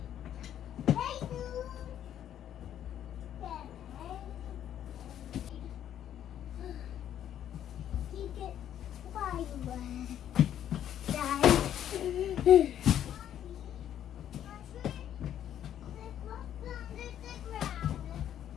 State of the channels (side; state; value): right; quieter; 10.5 dB